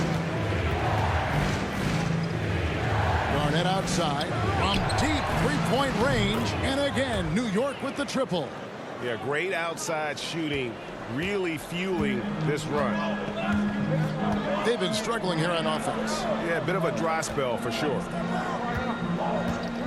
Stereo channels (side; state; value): both; identical; correlation 1.00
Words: Outside from deep three-point range, and again New York with the triple. Yeah, great outside shooting, really fueling this run. They've been struggling here on offense. Yeah, a bit of a dry spell for sure.